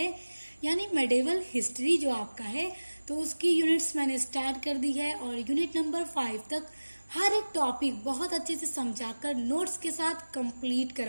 यानी मेडिवल हिस्ट्री जो आपका है, तो उसकी यूनिट्स मैंने स्टार्ट कर दी है और यूनिट नंबर 5 तक हर एक टॉपिक बहुत अच्छे से समझाकर नोट्स के साथ कंप्लीट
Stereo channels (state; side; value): inverted; both; correlation -1.00